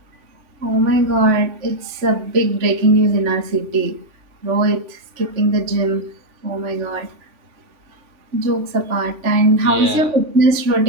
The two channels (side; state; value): left; late; 3.4 ms